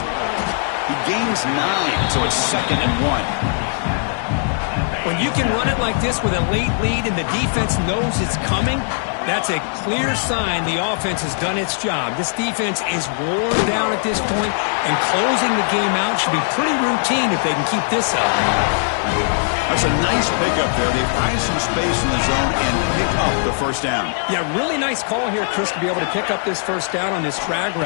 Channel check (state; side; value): silent; right; 66 dB below the other